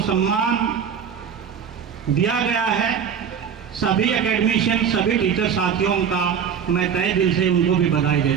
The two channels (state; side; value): quieter; left; 7.5 dB